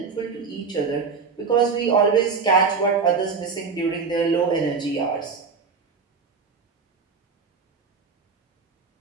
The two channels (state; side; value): quieter; left; 5.1 dB